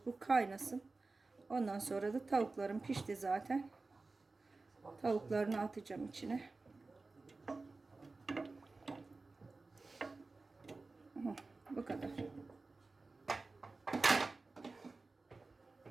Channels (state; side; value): quieter; left; 3.6 dB